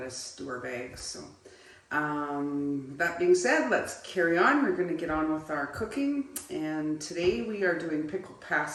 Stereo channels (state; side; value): identical; both; correlation 1.00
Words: us do our bags. So that being said, let's carry on. We're going to get on with our cooking. And today we are doing pickled